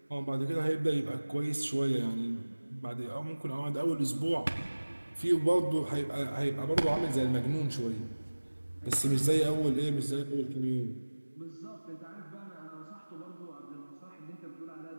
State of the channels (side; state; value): both; inverted; correlation -1.00